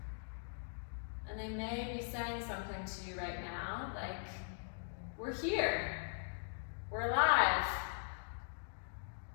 And they may be saying something to you right now, like, we're here, we're alive.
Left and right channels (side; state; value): right; silent; digital silence